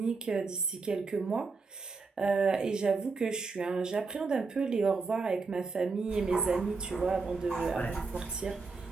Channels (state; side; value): quieter; left; 4.3 dB